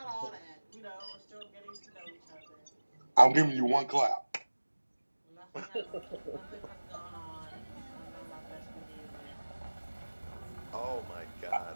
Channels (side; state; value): both; inverted; correlation -1.00